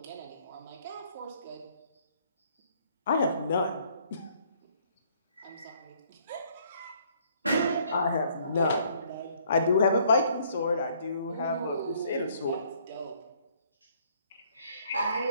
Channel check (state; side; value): inverted; both; correlation -0.63